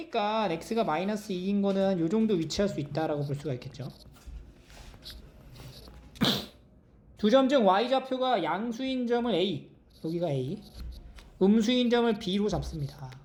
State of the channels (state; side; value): identical; both; correlation 1.00